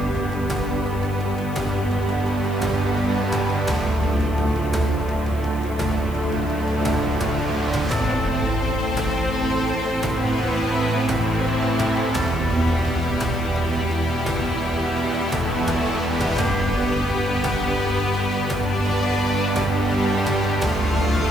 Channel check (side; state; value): left; noise; hiss, 21 dB below the sound